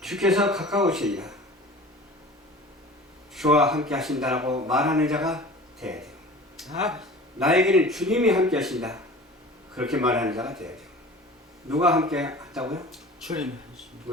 가까우시니라. 주와 함께 하신다라고 말하는 자가 되어야 돼요. 나에게는 주님이 함께 하신다. 그렇게 말하는 자가 되어야 돼요. 누가 함께 한다고요? 주님.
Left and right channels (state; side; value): normal; both; correlation 0.41